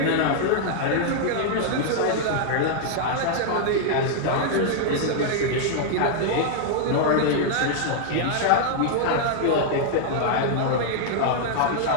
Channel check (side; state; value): both; different; correlation -0.01